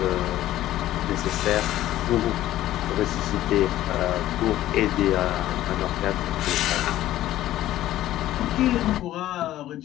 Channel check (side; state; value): right; quieter; 14.0 dB